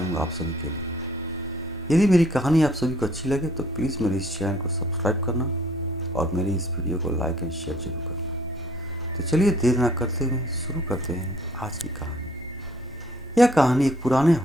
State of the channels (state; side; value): normal; both; correlation 0.60